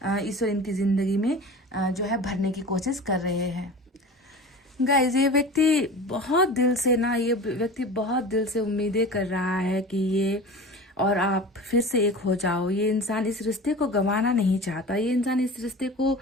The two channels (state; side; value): normal; both; correlation 0.35